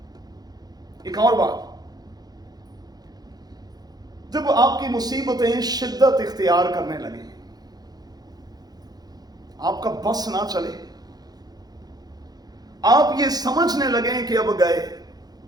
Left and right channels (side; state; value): left; late; 0.19 ms